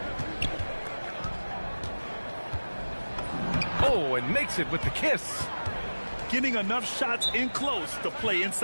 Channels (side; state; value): both; inverted; correlation -1.00